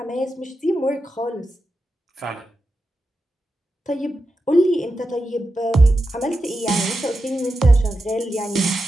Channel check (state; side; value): normal; both; correlation 0.89